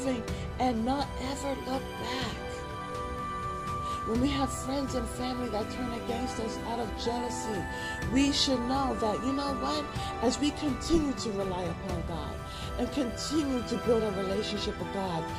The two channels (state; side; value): identical; both; correlation 1.00